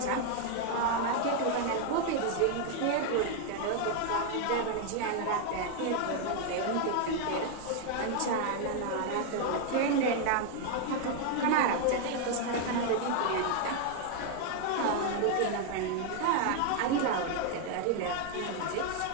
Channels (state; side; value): different; both; correlation 0.00